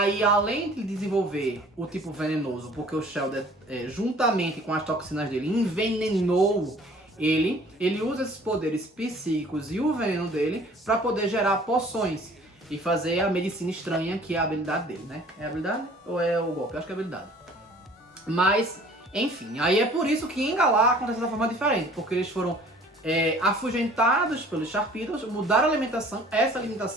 além de desenvolver o tipo venenoso, porque o Shellder, juntamente com as toxinas dele, envenenou ele usa esses poderes psíquicos e o veneno dele para poder gerar poções e fazer a medicina estranha, que é a habilidade dele, né? É a habilidade ou é o golpe? Eu acho que é a habilidade. Mas, enfim, aí é por isso que em Galar acontece de forma diferente, porque eles foram afugentados pelos Sharpedos, mudaram a alimentação, essa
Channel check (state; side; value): normal; both; correlation 0.51